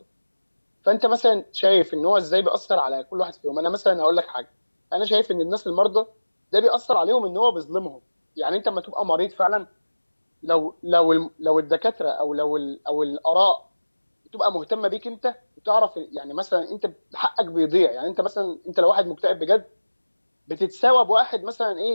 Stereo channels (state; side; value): inverted; both; correlation -1.00